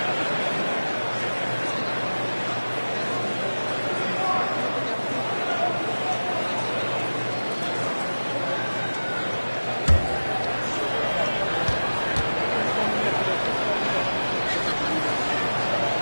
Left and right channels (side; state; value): both; inverted; correlation -1.00